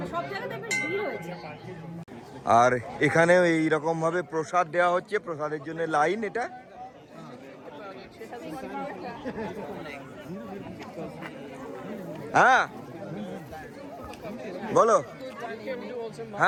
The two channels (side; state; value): both; identical; correlation 1.00